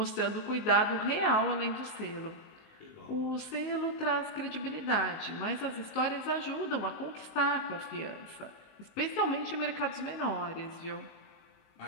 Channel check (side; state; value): right; late; 19 ms